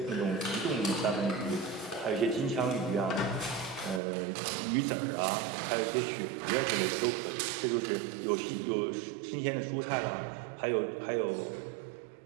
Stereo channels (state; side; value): drops out; left; at 4.0 s